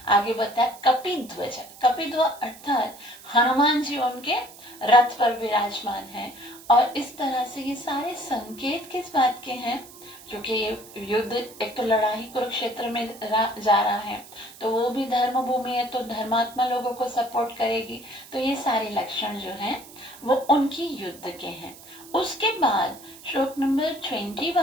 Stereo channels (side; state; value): right; noise; hiss, 19 dB below the sound